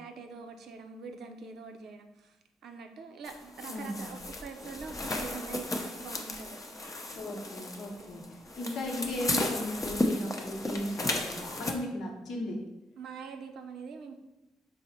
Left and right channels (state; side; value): normal; both; correlation 0.71